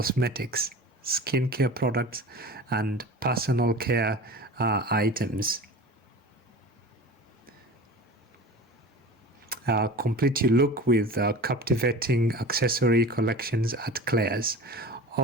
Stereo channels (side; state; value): both; normal; correlation 0.36